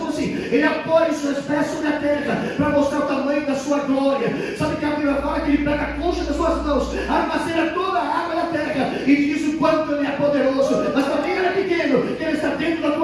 assim? Ele apoia os seus pés sobre a terra para mostrar o tamanho da sua glória. Sabe que a Bíblia fala que ele pega a concha das suas mãos, armazena toda a água da terra e diz o quanto ele é poderoso. Mas para quem ele é pequeno, que ele está dentro da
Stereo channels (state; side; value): identical; both; correlation 1.00